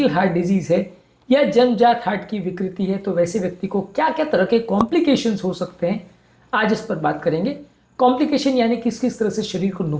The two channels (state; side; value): identical; both; correlation 1.00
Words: हार्ट डिजीज़ है या जन्मजात हार्ट की विकृति है तो वैसे व्यक्ति को क्या क्या तरह के कॉम्प्लिकेशंस हो सकते हैं, आज इस पर बात करेंगे। कॉम्प्लिकेशन यानी किस किस तरह से शरीर को